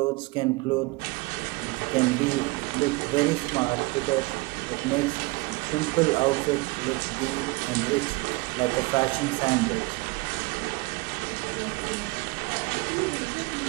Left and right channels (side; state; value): left; quieter; 24.7 dB